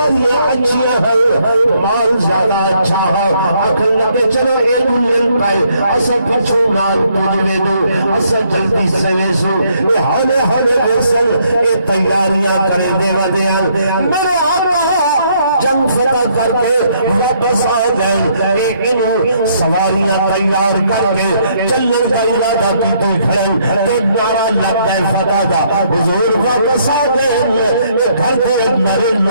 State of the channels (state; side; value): inverted; both; correlation -0.69